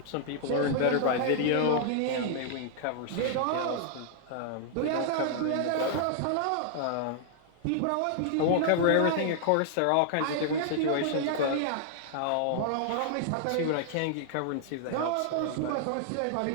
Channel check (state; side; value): different; both; correlation -0.01